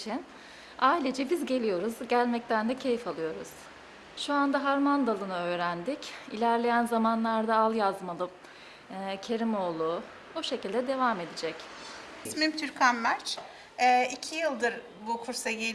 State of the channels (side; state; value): both; identical; correlation 1.00